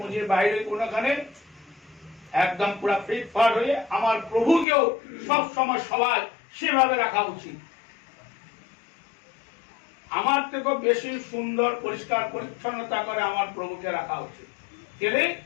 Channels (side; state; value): right; drops out; at 4.7 s